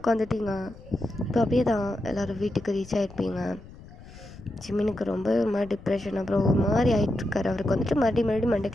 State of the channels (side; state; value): left; noise; rumble, 18 dB below the sound